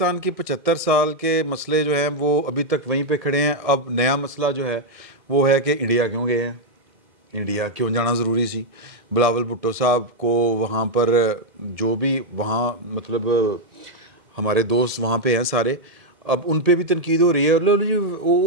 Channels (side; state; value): left; late; 1.7 ms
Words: की 75 साल के मसले जो हैं वो अभी तक वहीं पे खड़े हैं। अब नया मसला जो है वो है कि इंडिया क्यों गए हैं, इंडिया क्यों जाना ज़रूरी सी। बिलावल भुट्टो साहब को वहाँ पर जो भी वहाँ मतलब हमारे दोस्त वहाँ पे हैं सारे, अब उन पे भी तनकीद हो रही है। लो जी